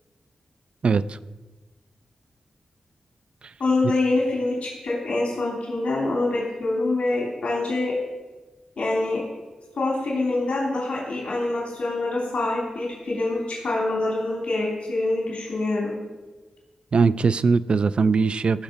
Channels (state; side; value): normal; both; correlation 0.88